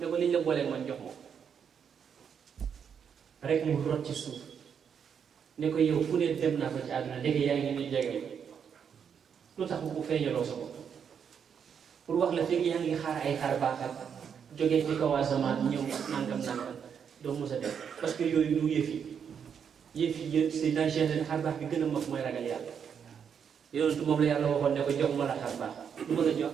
ko liñ la booleeg man jox moom rek mu rot ci suuf ne ko yow fu ne dem naa fa ci àdduna léegi yaa ngi ni jege lu tax bu feeñaloo sa bopp pour wax la fekk yaa ngi xaar ay xaar baaxal jógee ci kaw asamaan ñëw nangam doo mos a def parce que yooyu du yëf yi c'est dans Cheikh xaar baax bi gën a mag mooy ragal yàlla yonentu moom la yàlla waxoon ne ko jox ma la xaar baax lu ma la jox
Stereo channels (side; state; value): left; quieter; 7.4 dB